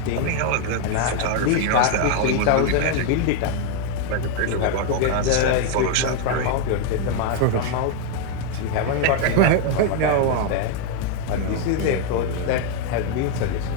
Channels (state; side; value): different; both; correlation 0.00